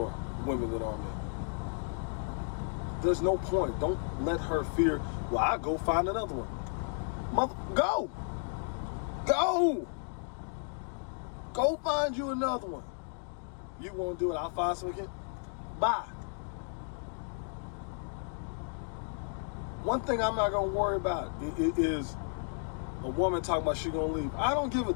women than are men. There's no point. Don't let her fear. Well, I'll go find another one. Go. Go find you another one. You won't do it. I'll find some again. Bye. One thing I'm not going to worry about is a woman talking about she going to leave. I don't give a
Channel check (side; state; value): right; silent; 55 dB below the other